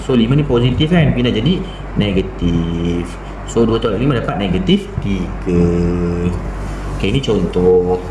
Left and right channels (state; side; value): identical; both; correlation 1.00